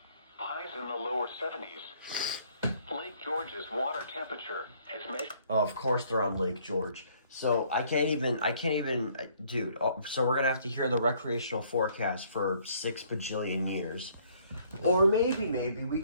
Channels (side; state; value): both; inverted; correlation -0.62